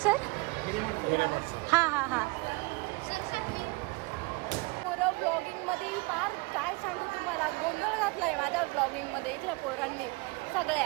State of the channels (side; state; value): left; quieter; 26.1 dB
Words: हा हा हा. पोरं ब्लॉगिंग मध्ये फार काय सांगू तुम्हाला, गोंधळ घातलाय माझ्या ब्लॉगिंग मध्ये. इथल्या पोरांनी